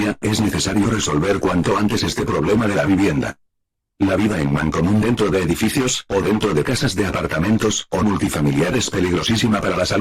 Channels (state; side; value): identical; both; correlation 1.00